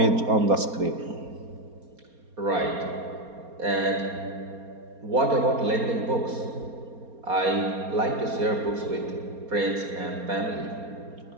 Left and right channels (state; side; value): late; left; 4.3 ms